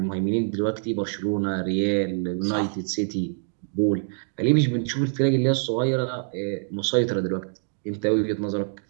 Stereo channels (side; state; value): left; silent; digital silence